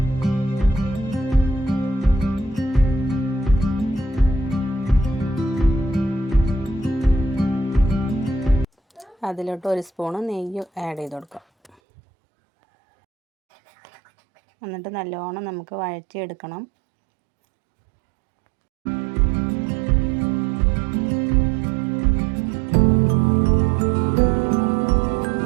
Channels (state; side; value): drops out; left; at 11.7 s